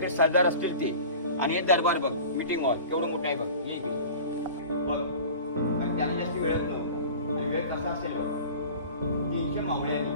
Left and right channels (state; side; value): inverted; both; correlation -0.40